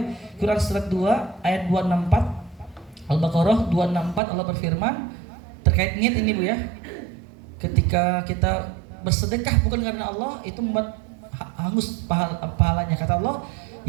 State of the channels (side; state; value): left; drops out; at 4.2 s